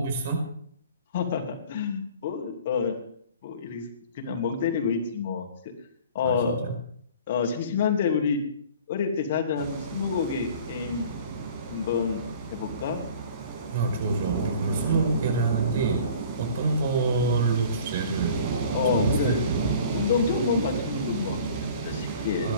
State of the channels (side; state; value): both; inverted; correlation -0.46